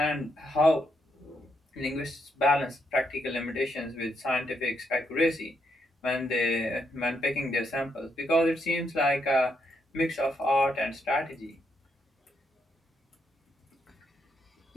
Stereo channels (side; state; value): both; normal; correlation 0.78